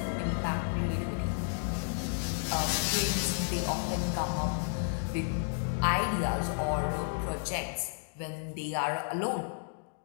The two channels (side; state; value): right; silent; digital silence